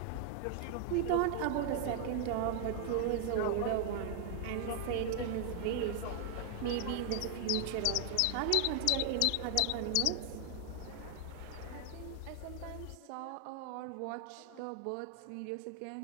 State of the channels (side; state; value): both; different; correlation 0.00